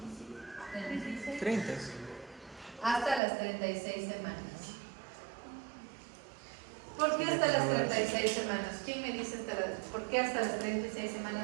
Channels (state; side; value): drops out; left; at 3.2 s